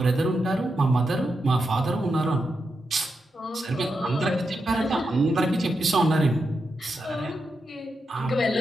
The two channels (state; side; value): normal; both; correlation 0.86